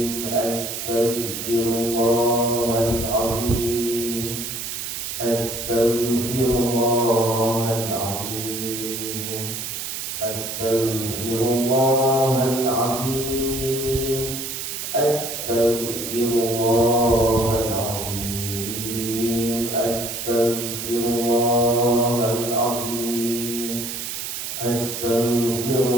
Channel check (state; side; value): noise; right; hiss, 5 dB below the sound